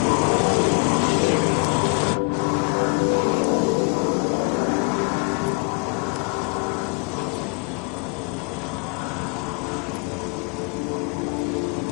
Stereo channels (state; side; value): quieter; right; 34.3 dB